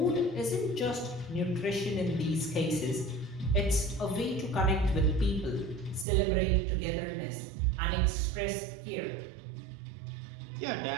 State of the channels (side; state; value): left; drops out; at 6.1 s